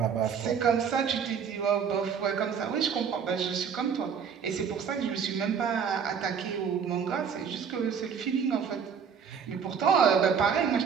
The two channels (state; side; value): quieter; left; 6.9 dB